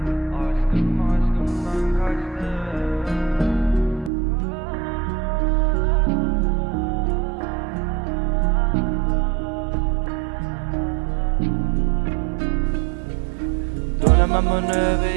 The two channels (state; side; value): drops out; left; at 4.1 s